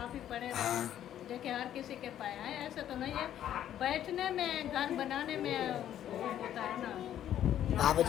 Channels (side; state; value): right; quieter; 11.1 dB